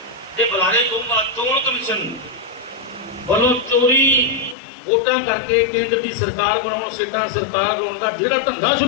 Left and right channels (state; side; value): drops out; right; at 4.5 s